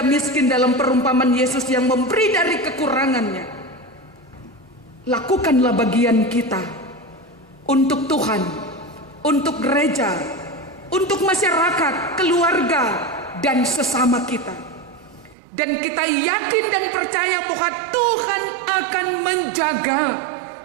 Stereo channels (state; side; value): drops out; left; at 15.4 s